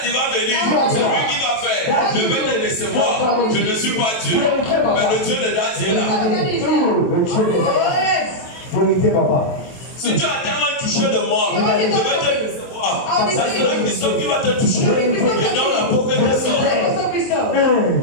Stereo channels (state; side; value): late; right; 23 ms